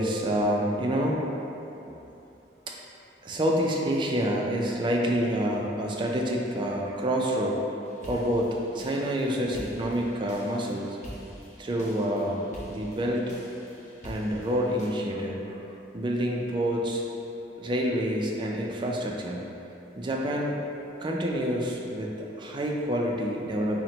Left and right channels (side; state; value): both; normal; correlation 0.55